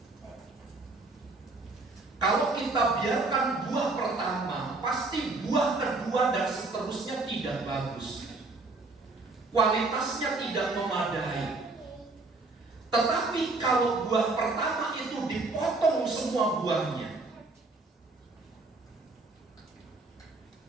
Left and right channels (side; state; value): left; quieter; 3.5 dB